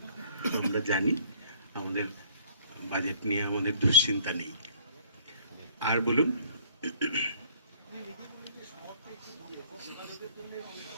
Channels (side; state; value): both; inverted; correlation -0.58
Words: আমরা জানি আমাদের বাজেট নিয়ে আমাদের দুশ্চিন্তা নেই। আর বলুন,